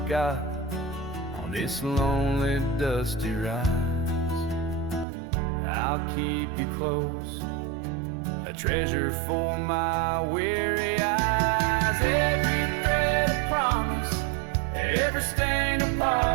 on this lonely dusty ride, I'll keep you close, a treasure for my weary eyes. Every thread a promise, every stain a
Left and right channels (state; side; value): drops out; left; at 5.1 s